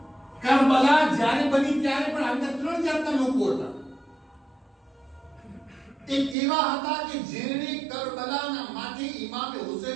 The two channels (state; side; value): drops out; left; at 6.4 s